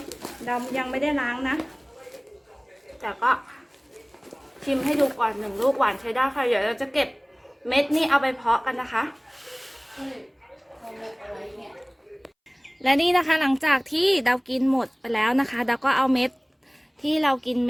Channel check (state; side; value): identical; both; correlation 1.00